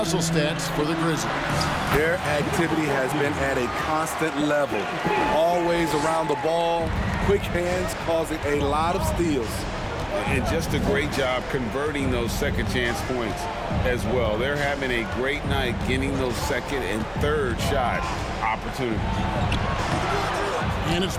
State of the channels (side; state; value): both; identical; correlation 1.00